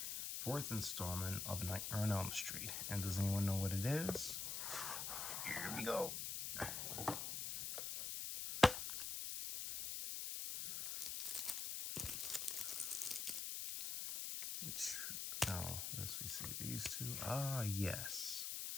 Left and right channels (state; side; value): noise; left; hiss, 2 dB below the sound